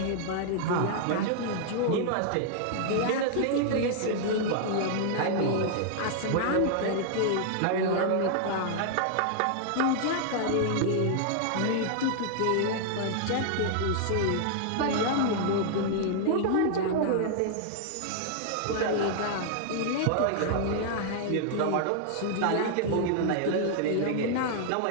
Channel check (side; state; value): both; different; correlation -0.01